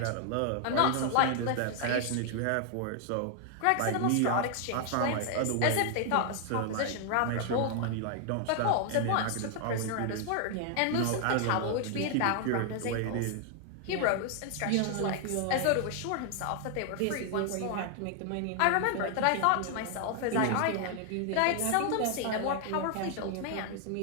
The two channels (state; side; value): different; both; correlation 0.00